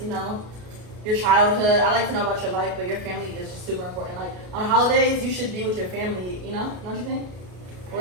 know, your childhood. I like to know about your life, but your family is just super important. Like, on holidays, you should be with your family, you know? Don't you think?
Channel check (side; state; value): left; late; 33 ms